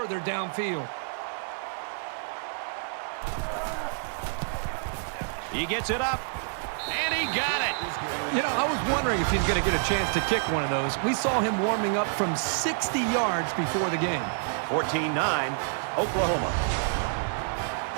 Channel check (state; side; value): silent; left; digital silence